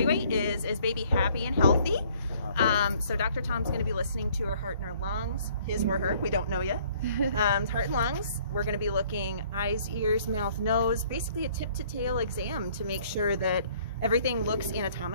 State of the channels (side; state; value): both; inverted; correlation -0.60